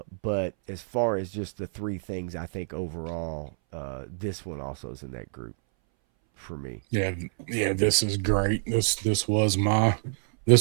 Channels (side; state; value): left; silent; 60 dB below the other